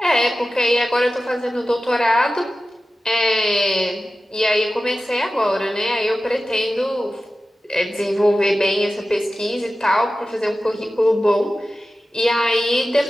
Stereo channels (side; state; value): both; normal; correlation 0.94